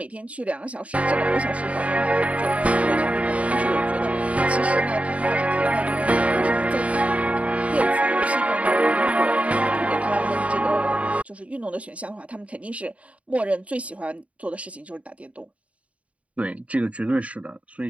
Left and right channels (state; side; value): late; left; 0.066 ms